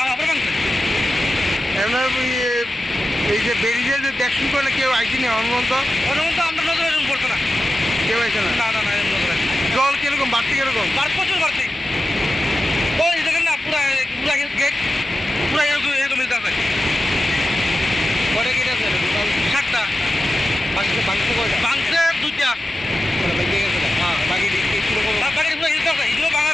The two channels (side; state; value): both; normal; correlation 0.92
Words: আবার ভাঙছে এমনি এই যে বেরিয়ে যে দেখুন করলে কেউ আইসিনি অনুমন্ত অনুমন্ত আমরা নজরে পড়ছে না কেউ আইসে না না না না জল কিরকম বাড়তি কিরকম প্রচুর বাড়তি ওই দেখেন না পুরা পুরা গেট পুরা এরকম এরকম মিলতে আছে কটা গেট আছে 7টা ভাঙছে কয়টা ভাঙছে 2টা ভেঙে গেছে হ্যাঁ বাকি কিরকম বাকি পুরো হিলতে আছে এগুলো